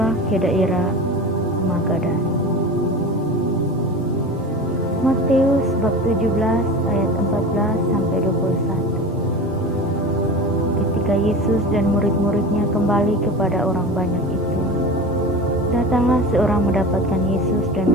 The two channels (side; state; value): both; normal; correlation 0.31